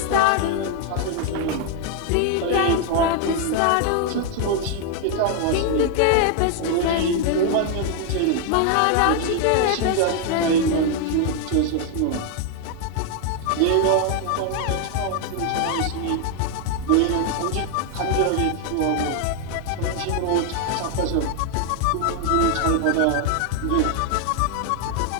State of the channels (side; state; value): both; different; correlation 0.00